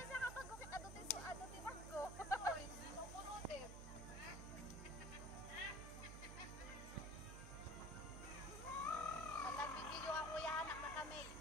siya kapag gukit ato ti bangko? Otois, pupunutin. Nagbibideo ako ya anak naka-make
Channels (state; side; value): noise; right; hum, 8 dB below the sound